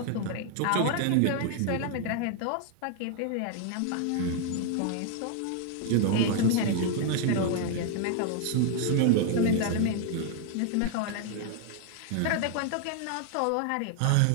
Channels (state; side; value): different; both; correlation 0.00